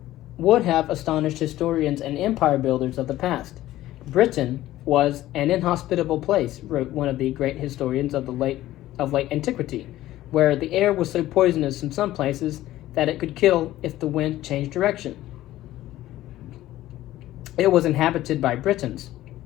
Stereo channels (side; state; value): right; quieter; 15.0 dB